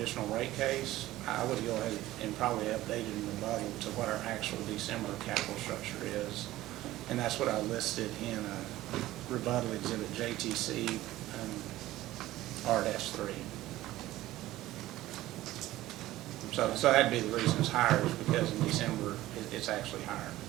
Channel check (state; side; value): quieter; left; 15.9 dB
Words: rate case, I would go ahead and probably update it in rebuttal to what our actual December capital structure is. And that's what I listed in rebuttal exhibit JTC RS3. So that'd be the reason it's higher, is because in December it's actually higher.